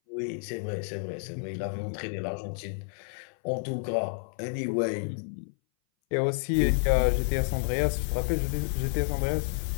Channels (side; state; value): right; silent; 58 dB below the other